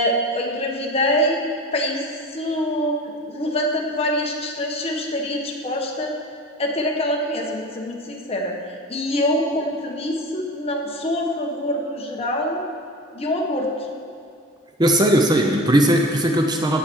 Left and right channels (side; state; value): both; normal; correlation 0.35